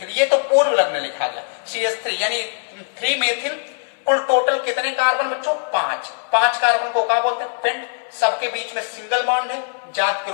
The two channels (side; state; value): right; silent; 65 dB below the other